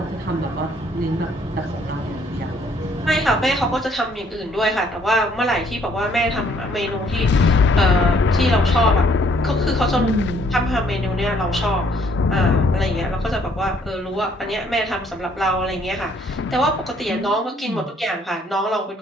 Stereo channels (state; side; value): normal; both; correlation 0.64